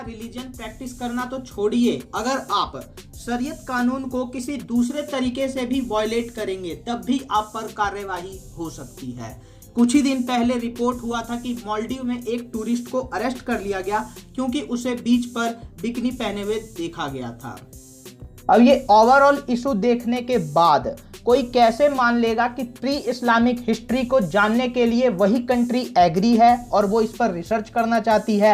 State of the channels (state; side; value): identical; both; correlation 1.00